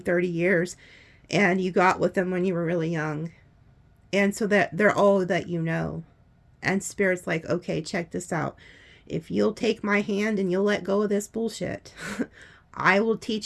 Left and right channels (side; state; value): both; identical; correlation 1.00